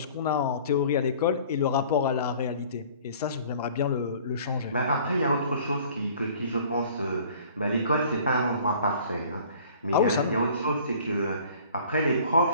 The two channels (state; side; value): inverted; both; correlation -0.50